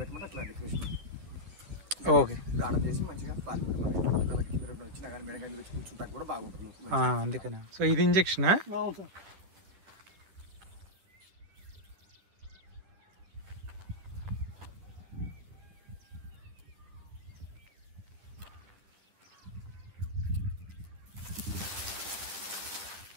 పెట్టమంటే అట్లా డెకరేషన్ ఓకే గార్డెన్ చేసి మంచిగా ఫార్మింగ్ మనకి పిల్లలకి కింద వచ్చినా కానీ మేడ కానీ వచ్చి కూర్చుంటా కూడా బాగుంటుంది. అందుకనే. సో ఇది ఇంజెక్షనా? అవును సార్.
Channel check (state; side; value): late; left; 10 ms